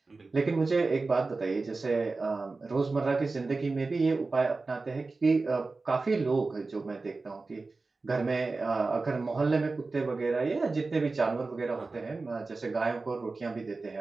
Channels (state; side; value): quieter; left; 3.7 dB